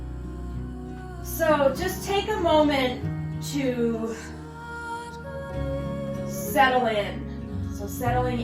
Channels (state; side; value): identical; both; correlation 1.00